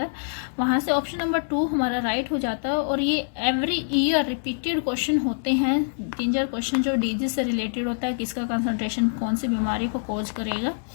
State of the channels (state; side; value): silent; right; digital silence